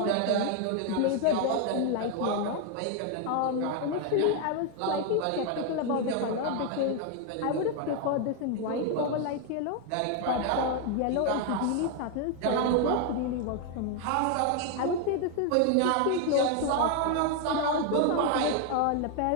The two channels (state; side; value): different; both; correlation 0.01